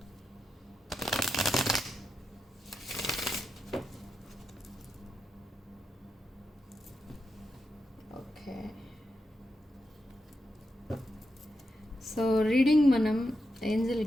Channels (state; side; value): normal; both; correlation 0.87